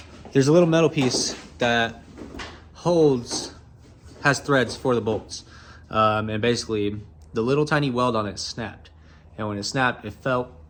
There's a little metal piece that has threads for the bolts. And basically, the little tiny weld on it snapped. And when it snapped, it fell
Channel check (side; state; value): both; identical; correlation 1.00